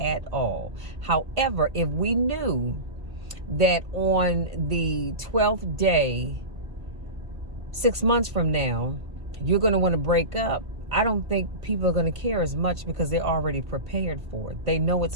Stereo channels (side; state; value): left; late; 1.5 ms